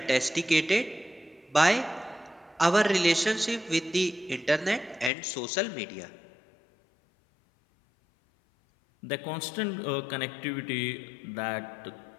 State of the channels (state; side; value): drops out; right; at 5.1 s